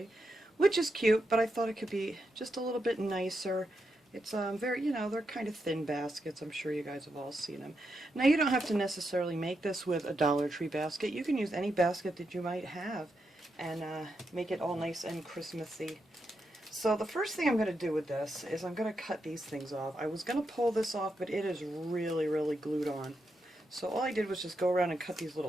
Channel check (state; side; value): normal; both; correlation 0.84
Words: which is cute, but I thought it could be just a little bit nicer. It's very, they're kind of thin baskets. I'm sure you guys have all seen them. Now you don't have to necessarily make this with a Dollar Tree basket. You can use any basket that you might have and make it all nice and Christmassy. So the first thing I'm going to do with this is I'm going to cut these things off. I was going to pull this off, but it is really glued on. So all I did was just go around and cut these